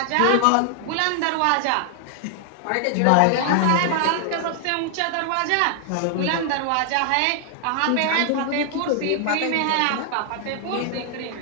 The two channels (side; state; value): both; different; correlation 0.00